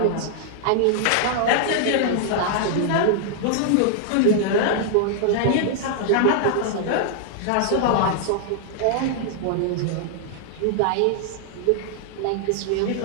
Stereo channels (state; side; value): different; both; correlation -0.01